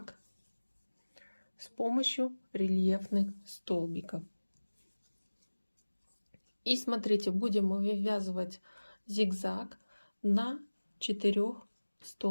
с помощью рельефных столбиков. И смотрите, будем вывязывать зигзаг на 4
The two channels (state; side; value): inverted; both; correlation -1.00